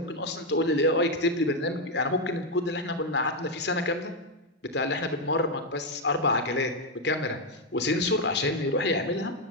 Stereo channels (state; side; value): normal; both; correlation 0.04